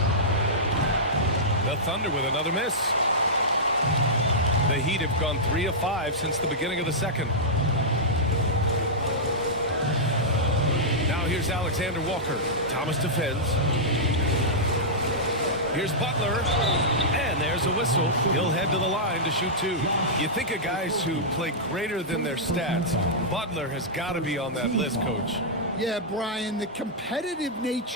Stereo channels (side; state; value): both; normal; correlation -0.11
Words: The Thunder with another miss. The Heat have gone 3 of 5 since the beginning of the second. Now here's Alexander Walker. Thomas defends. Here's Butler. And there's a whistle. He'll head to the line to shoot 2. You think of guys who play greater than their stats. Butler has got to be on that list, Coach. Yeah, Brian, the competitive